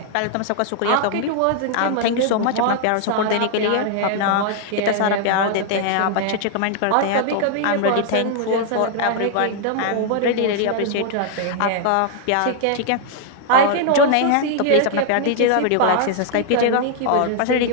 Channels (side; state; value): both; different; correlation 0.00